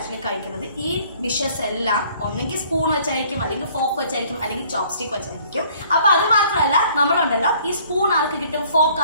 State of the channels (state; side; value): inverted; both; correlation -0.58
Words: കഴിക്കുന്നത്. ഈ ഡിഷസ് എല്ലാം ഒന്നെങ്കിൽ സ്പൂൺ വെച്ചായിരിക്കും, അല്ലെങ്കിൽ ഫോർക്ക് വെച്ചായിരിക്കും, അല്ലെങ്കിൽ ചോപ്സ്റ്റിക് വെച്ചായിരിക്കും. അപ്പൊ അത് മാത്രമല്ല, നമ്മളുണ്ടല്ലോ ഈ സ്പൂൺ ആർക്ക് കിട്ടും, ഫോർക്ക്